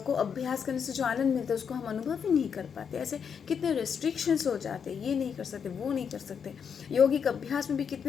को अभ्यास करने से जो आनंद मिलता है उसको हम अनुभव ही नहीं कर पाते। ऐसे कितने रेस्ट्रिक्शंस हो जाते हैं, ये नहीं कर सकते, वो नहीं कर सकते। योगिक अभ्यास में भी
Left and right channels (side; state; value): right; quieter; 7.0 dB